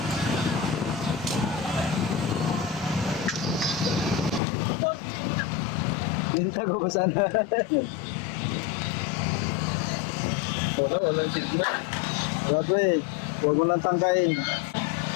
Linta ko ba sana? Walang signal. Wala eh. Huwag mo lang tangkain.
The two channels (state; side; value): drops out; right; at 4.4 s